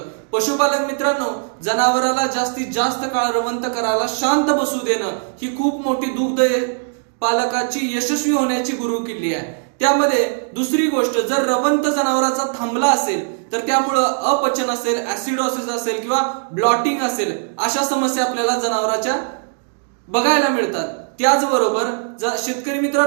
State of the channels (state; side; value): silent; left; digital silence